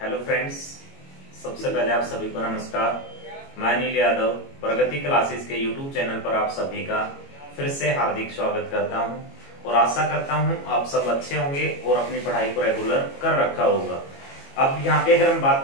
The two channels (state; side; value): late; right; 22 ms